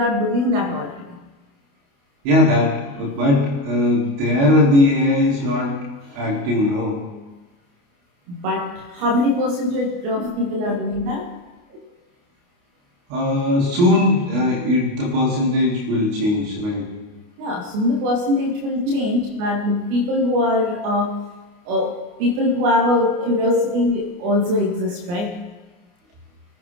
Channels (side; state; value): left; late; 28 ms